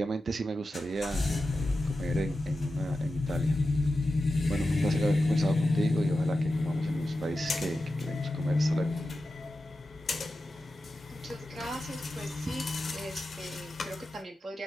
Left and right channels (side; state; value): both; normal; correlation 0.92